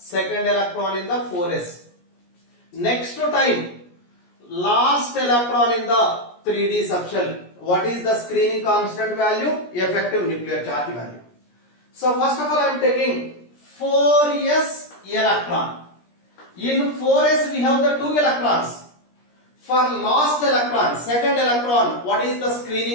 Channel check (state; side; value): late; right; 17 ms